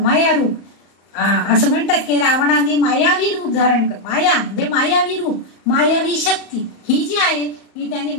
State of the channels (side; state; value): right; late; 34 ms